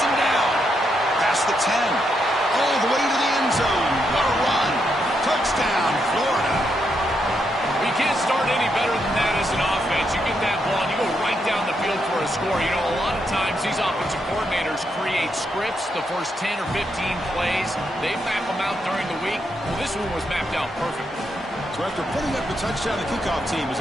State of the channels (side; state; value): both; normal; correlation 0.80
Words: down? Past the 10. All the way to the end zone. What a run. Touchdown, Florida. You can't start any better than that as an offense. You get that ball and you go right down the field for a score. You know, a lot of times these offensive coordinators create scripts the first 10 or 15 plays. They map them out during the week. Well, this one was mapped out perfectly. So after putting up the touchdown, the kickoff team is